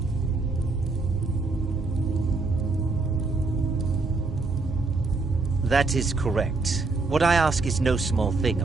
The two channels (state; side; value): quieter; left; 3.8 dB